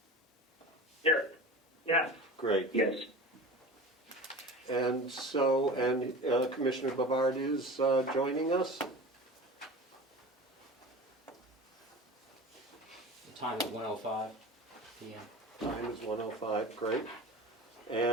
Here. Yes. Great. Yes. And so, Commissioner Bavard is joining us. The time is 1:05 p.m. Time is 1:05, great.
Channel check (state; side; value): normal; both; correlation 0.34